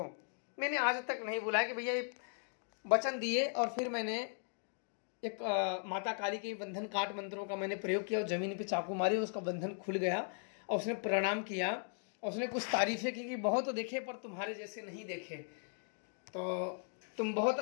मैंने आज तक नहीं बुलाया कि भैया ये वचन दिए और फिर मैंने एक माता काली के बंधन काट मंत्रों का मैंने प्रयोग किया और ज़मीन पे चाकू मारी, उसका बंधन खुल गया और उसने प्रणाम किया और उसने कुछ तारीफ़ें की कि बहुत देखे पर तुम्हारे जैसे नहीं देखे, तो तुम बहुत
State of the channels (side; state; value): right; silent; 53 dB below the other